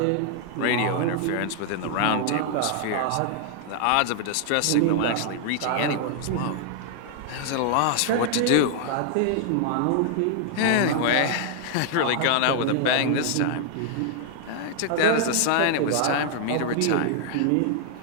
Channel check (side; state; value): both; different; correlation 0.00